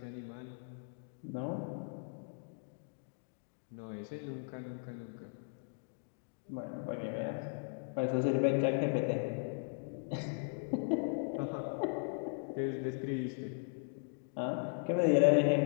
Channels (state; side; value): silent; right; digital silence